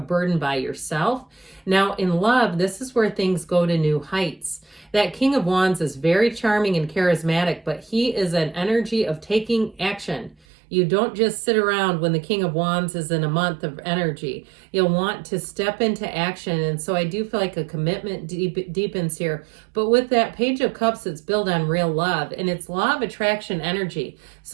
by yourself. Now in love, this is where things go to new heights. That King of Wands is very charming and charismatic, but he is an energy of taking action. You don't just sit around when the King of Wands is in a month of energy. You'll want to step into action. And so I do feel like a commitment deepens here. But with that Page of Cups, it's built on real love, and it's law of attraction energy.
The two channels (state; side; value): drops out; left; at 10.4 s